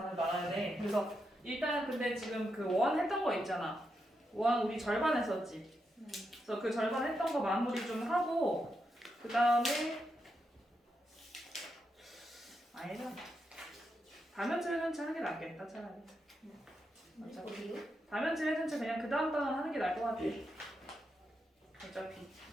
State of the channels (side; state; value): both; normal; correlation 0.84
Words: 나가야 돼. 그래서 일단 근데 지금 그 원 했던 거 있잖아. 원 우리 절반 했었지. 그래서 그 절반 했던 거 마무리 좀 하고 그 다음에 아니다. 다면체 회전체 하는 게 낫겠다 차라리. 어디요? 다면체 회전체 그냥 그 다음 단어 하는 게 나을 것 같아. 어차피.